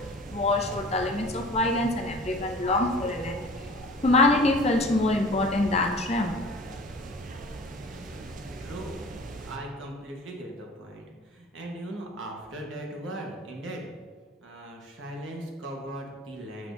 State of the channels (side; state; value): both; normal; correlation 0.43